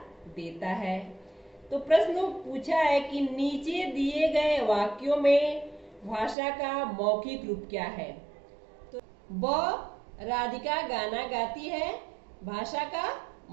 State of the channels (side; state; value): left; drops out; at 6.4 s